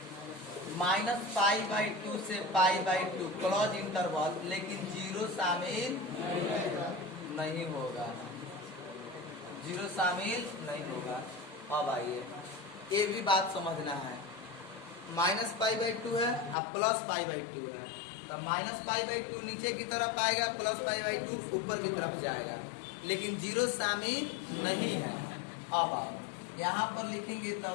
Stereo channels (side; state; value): right; drops out; at 16.6 s